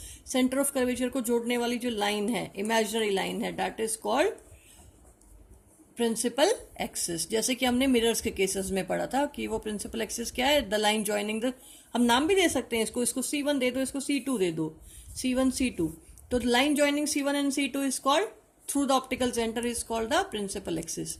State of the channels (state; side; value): identical; both; correlation 1.00